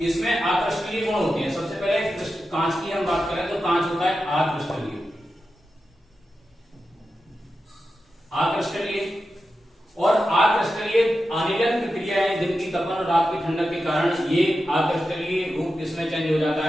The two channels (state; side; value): normal; both; correlation 0.91